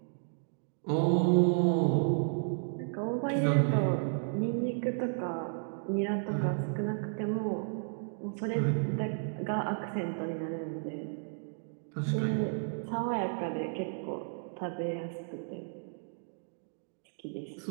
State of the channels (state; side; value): silent; left; digital silence